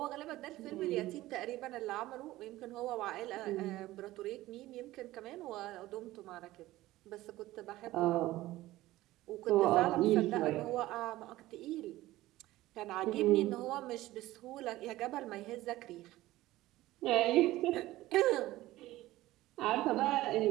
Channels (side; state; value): left; quieter; 16.7 dB